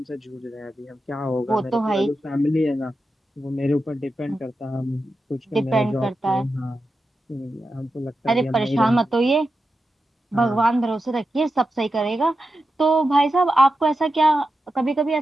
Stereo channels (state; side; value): normal; both; correlation 0.90